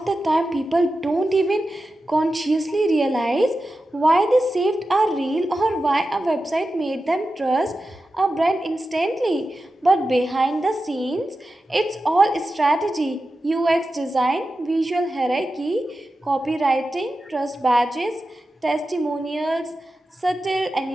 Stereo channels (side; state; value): both; normal; correlation 0.92